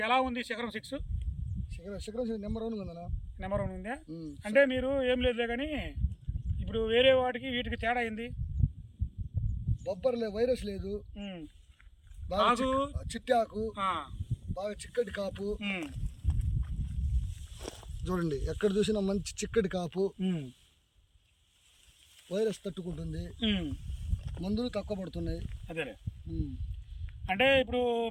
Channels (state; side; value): identical; both; correlation 1.00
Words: ఎలా ఉంది? శిఖరం 6 శిఖరం నెంబర్ 1 ఉందన్నా. నెంబర్ 1 ఉందా? అంటే మీరు ఏం లేదులే కానీ ఇప్పుడు వేరే వాటికి వీటికి తేడా అయింది. బొబ్బర్ లేదు, వైరస్ లేదు, బాగా చిట్టాకు, బాగా చిక్కటి కాపు. చూడండి, ఎక్కడ చూసినా మంచి చిక్కటి కాపు, వైరస్ తట్టుకుంటుంది, మందులు తక్కువ పడుతున్నాయి. అదే అంటే ఇప్పుడు